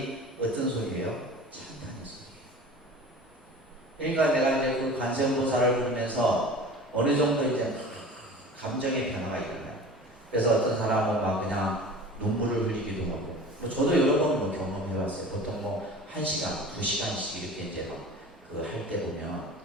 어떤 소리예요? 찬탄의 소리예요. 그러니까 내가 이제 그 관세음보살을 부르면서 어느 정도 이제 감정의 변화가 일어나요. 그래서 어떤 사람은 막 그냥 눈물을 흘리기도 하고, 저도 여러 번 경험해봤어요. 보통 뭐 1시간, 2시간씩 이렇게 이제 그 할 때 보면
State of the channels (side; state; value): both; normal; correlation 0.39